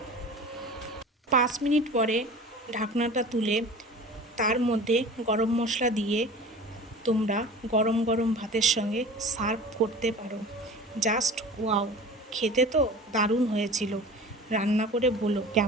5 মিনিট পরে ঢাকনাটা তুলে তার মধ্যে গরম মশলা দিয়ে তোমরা গরম গরম ভাতের সঙ্গে সার্ভ করতে পারো। Just wow! খেতে তো দারুণ হয়েছিল। রান্না করে বলো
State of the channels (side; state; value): both; normal; correlation 0.39